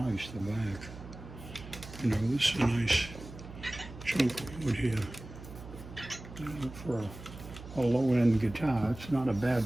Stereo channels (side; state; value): right; noise; hum, 14 dB below the sound